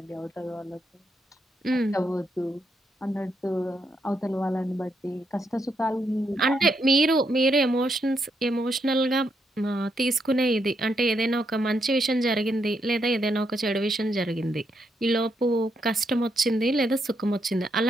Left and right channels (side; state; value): both; normal; correlation 0.79